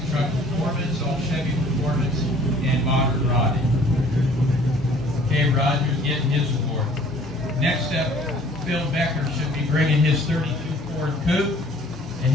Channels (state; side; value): normal; both; correlation 0.54